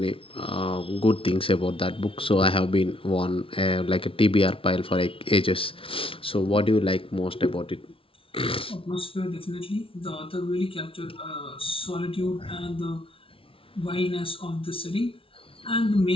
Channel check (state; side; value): late; right; 0.26 ms